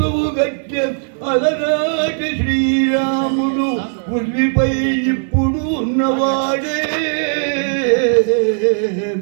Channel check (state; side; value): silent; left; 60 dB below the other